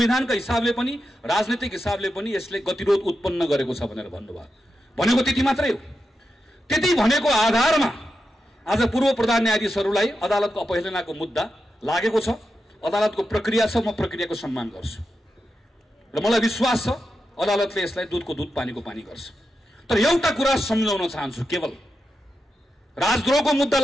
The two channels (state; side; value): normal; both; correlation 0.88